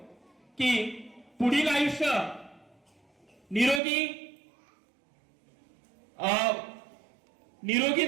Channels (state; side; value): drops out; left; at 3.8 s